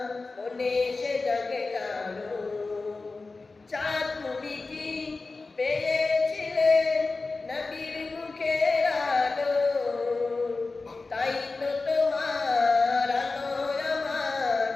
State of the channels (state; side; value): quieter; right; 3.7 dB